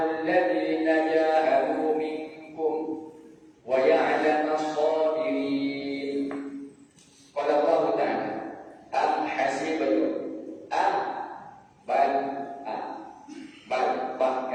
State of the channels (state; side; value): identical; both; correlation 1.00